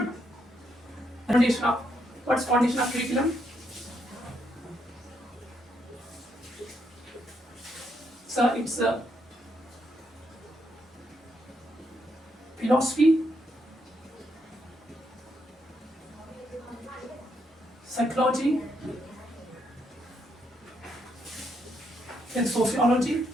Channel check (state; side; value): normal; both; correlation 0.77